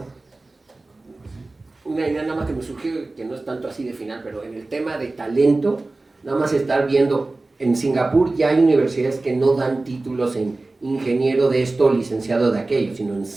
Una idea nada más que me surgió, que no es tanto así de final, pero en el tema de talento, nada más estar viendo, en Singapur ya hay universidades que no dan títulos en ingeniero de esto o licenciado de aquello, sino en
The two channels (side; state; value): left; quieter; 3.2 dB